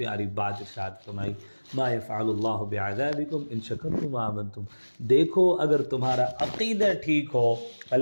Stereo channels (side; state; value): both; inverted; correlation -1.00